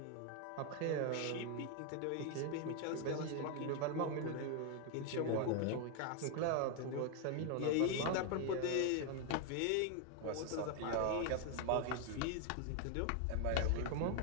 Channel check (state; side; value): different; both; correlation 0.01